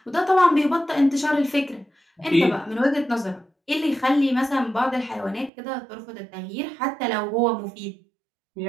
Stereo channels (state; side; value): drops out; left; at 5.5 s